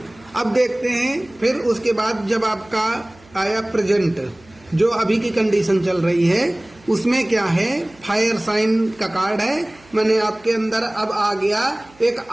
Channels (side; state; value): right; noise; hum, 27 dB below the sound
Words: अब देखते हैं फिर उसके बाद जब आपका आया प्रेजेंट, जो अभी की कंडीशन चल रही है उसमें क्या है, फायर साइन का कार्ड है। मैंने आपके अंदर अब आ गया एक